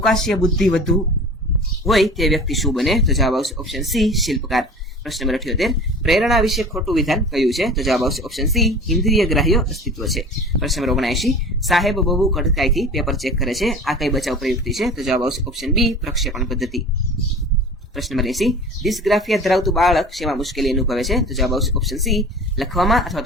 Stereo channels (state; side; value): normal; both; correlation 0.39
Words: બુદ્ધિ વધુ હોય તે વ્યક્તિ શું બને? તો જવાબ આવશે ઓપ્શન સી, શિલ્પકાર. પ્રશ્ન નંબર 78, પ્રેરણા વિશે ખોટું વિધાન કયું છે? તો જવાબ આવશે ઓપ્શન સી, ઇન્દ્રિય ગ્રાહ્ય અસ્તિત્વ છે. પ્રશ્ન નંબર 79, સાહેબ બહુ કડકાઈથી પેપર ચેક કરે છે, આ કઈ બચાવ પ્રયુક્તિ છે? તો જવાબ આવશે ઓપ્શન બી, પ્રક્ષેપણ પદ્ધતિ. પ્રશ્ન નંબર 80, ડિસ્ગ્રાફિયા ધરાવતું બાળક શેમાં મુશ્કેલી અનુભવે છે? તો જવાબ આવશે ઓપ્શન સી, લખવામાં અથવા